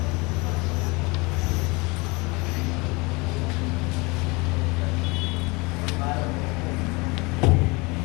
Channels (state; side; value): quieter; right; 26.3 dB